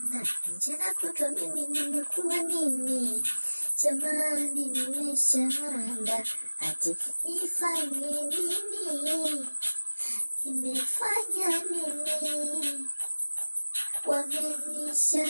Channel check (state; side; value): inverted; both; correlation -1.00